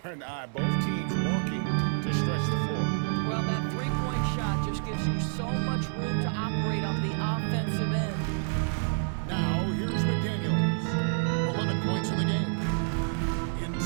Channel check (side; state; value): left; silent; 59 dB below the other